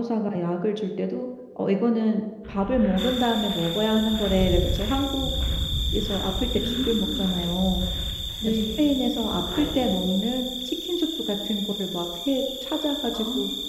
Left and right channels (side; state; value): both; identical; correlation 1.00